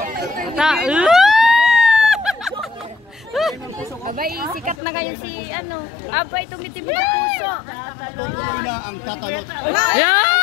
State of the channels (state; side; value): drops out; right; at 4.8 s